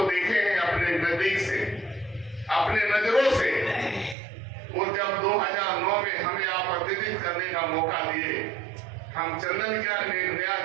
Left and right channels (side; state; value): left; drops out; at 4.2 s